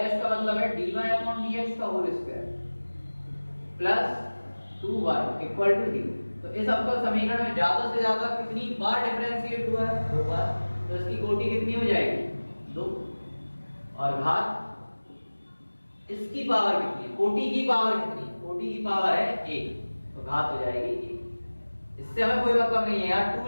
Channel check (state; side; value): inverted; both; correlation -1.00